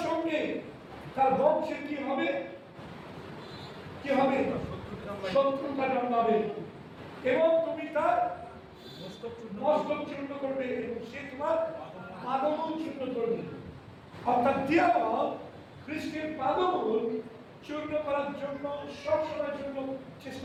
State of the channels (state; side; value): identical; both; correlation 1.00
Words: সঙ্গে তার বংশে কি হবে, কি হবে, শত্রুতা জন্মাবে এবং তুমি তার মস্তক চূর্ণ করবে এবং সে তোমার পাদমূল চূর্ণ করবে। অর্থাৎ দিয়াবল খ্রিস্টের পাদমূল চূর্ণ করার জন্য সবসময়ের জন্য